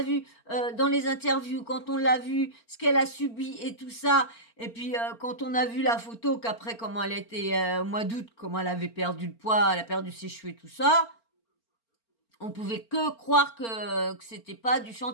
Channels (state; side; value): late; right; 4.4 ms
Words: vu dans les interviews, quand on l'a vu ce qu'elle a subi et tout ça, et puis quand on a vu la photo qu'après comment elle était au mois d'août, comment elle avait perdu le poids, elle a perdu ses cheveux et tout ça, on pouvait que croire que c'était pas du